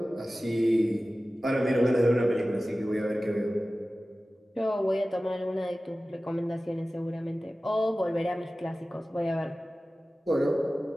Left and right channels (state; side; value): normal; both; correlation 0.96